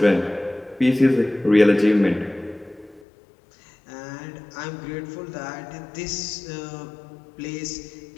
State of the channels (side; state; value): right; drops out; at 3.1 s